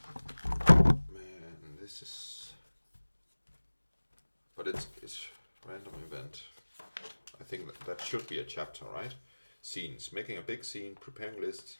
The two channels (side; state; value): both; inverted; correlation -1.00